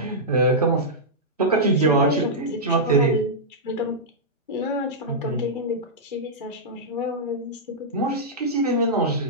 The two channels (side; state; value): both; normal; correlation -0.11